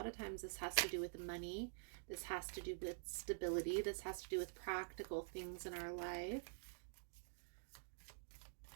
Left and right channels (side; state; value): left; silent; digital silence